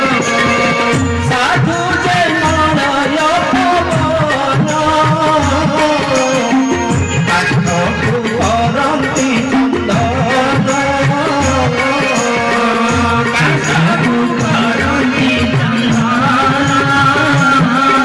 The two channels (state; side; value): identical; both; correlation 1.00